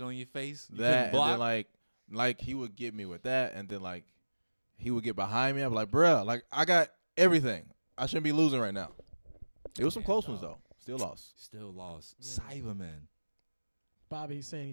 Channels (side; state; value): both; inverted; correlation -1.00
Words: on your face. You That couldn't and block. then like he would get me with that, and then like he would get behind me. I'd be like, bruh, like I got everything. I shouldn't be losing right now. It was some close ones though. Still lost. Still lost. Yeah. Cyberman. Bobby, he's saying